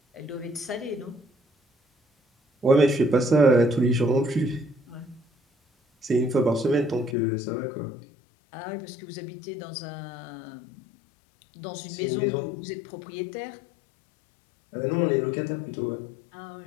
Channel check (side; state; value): right; drops out; at 7.2 s